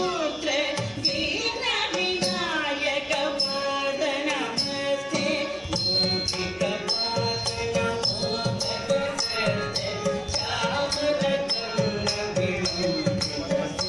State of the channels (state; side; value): identical; both; correlation 1.00